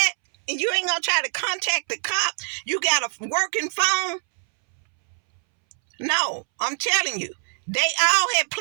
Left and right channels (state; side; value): silent; left; 63 dB below the other